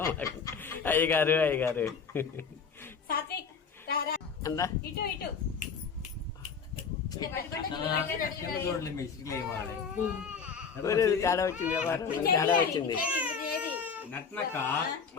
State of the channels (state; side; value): quieter; right; 5.9 dB